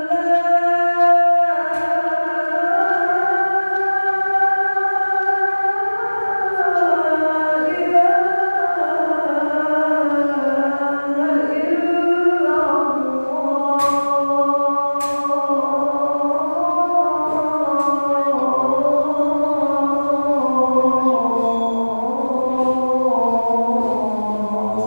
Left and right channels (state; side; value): inverted; both; correlation -1.00